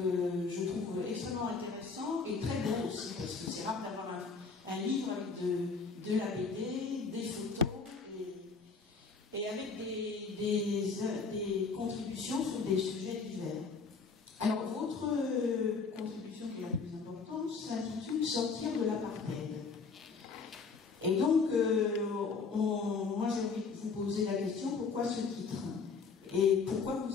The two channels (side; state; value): right; quieter; 4.8 dB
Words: je trouve extrêmement intéressant et très beau aussi, parce que c'est rare d'avoir un livre avec de la BD, des photos et avec des contributions sur des sujets divers. Alors votre contribution qui est la plus importante s'intitule « Sortir de l'apartheid ». Et donc, moi j'ai envie de vous poser la question, pourquoi ce titre? Et pourquoi